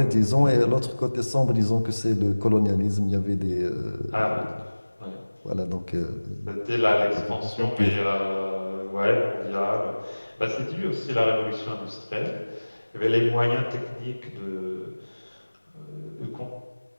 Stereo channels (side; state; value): both; inverted; correlation -1.00